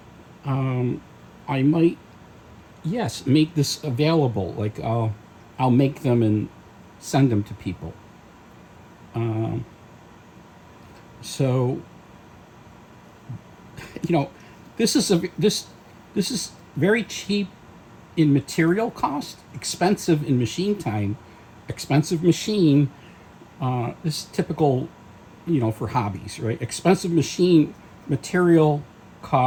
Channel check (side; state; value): both; identical; correlation 1.00